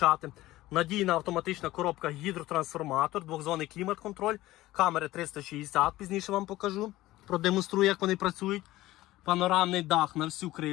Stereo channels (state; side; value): quieter; right; 16.8 dB